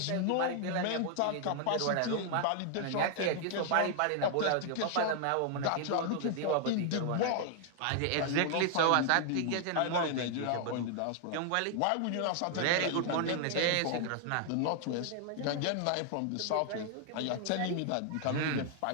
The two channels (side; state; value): both; different; correlation 0.00